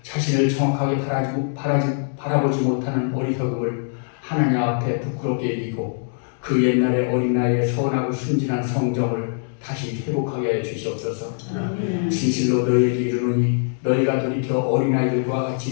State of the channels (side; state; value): right; silent; digital silence